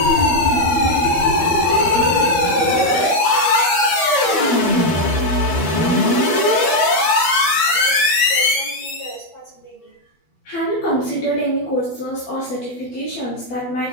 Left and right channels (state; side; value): late; right; 12 ms